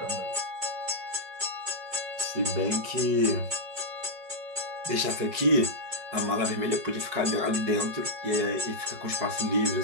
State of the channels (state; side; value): late; left; 5.4 ms